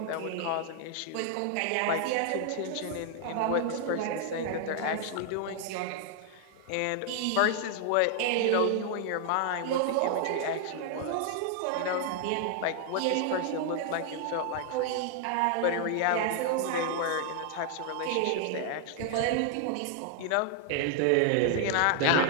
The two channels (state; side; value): different; both; correlation 0.00